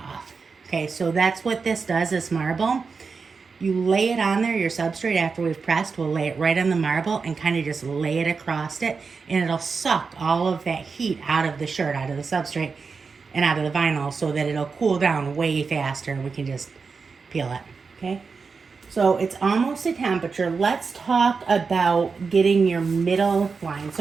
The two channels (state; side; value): quieter; left; 5.0 dB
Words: off. Okay, so that's what this does, this marble. You lay it on there, your substrate, after we've pressed, we'll lay it right on the marble and kind of just lay it across it, and it'll suck all of that heat out of the shirt, out of the substrate, and out of the vinyl so that it'll cool down way faster and we can just peel it, okay? So it's almost at temperature. Let's talk about getting your middle line.